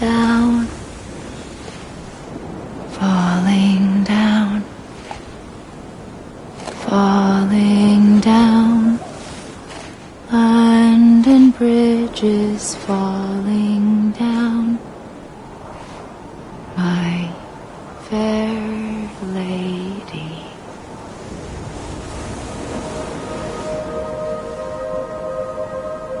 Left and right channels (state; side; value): identical; both; correlation 1.00